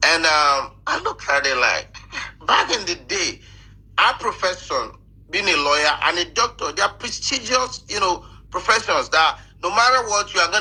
And I looked at it like, back in the day, our profession, being a lawyer and a doctor, they are prestigious, professions that no matter what, you are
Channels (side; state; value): both; identical; correlation 1.00